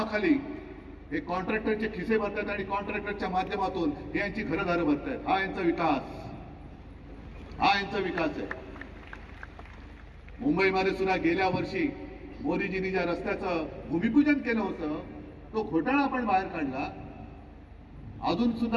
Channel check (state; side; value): identical; both; correlation 1.00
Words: हे कॉन्ट्रॅक्टरचे खिसे भरतात आणि कॉन्ट्रॅक्टरच्या माध्यमातून हे यांची घरदारं भरतात. हा यांचा विकास, हा यांचा विकास आहे. मुंबईमध्ये सुद्धा गेल्या वर्षी मोदीजींनी ज्या रस्त्याचं भूमिपूजन केलं होतं तो घोटाळा आपण बाहेर काढला. अजून